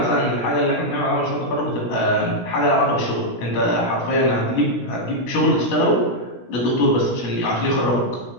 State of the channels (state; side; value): late; right; 16 ms